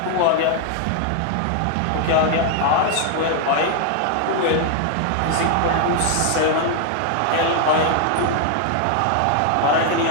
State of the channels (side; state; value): both; different; correlation 0.00